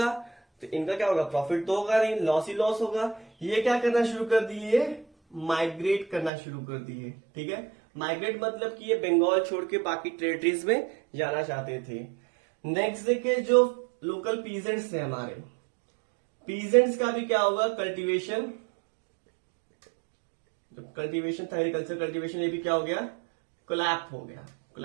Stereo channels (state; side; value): drops out; left; at 6.3 s